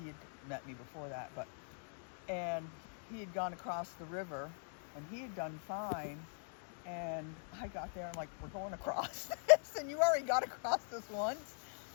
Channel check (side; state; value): right; silent; digital silence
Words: had met me before that, and he had gone across the river, and he had done fine. And I got there, I'm like, we're going across this, and you already got across this once.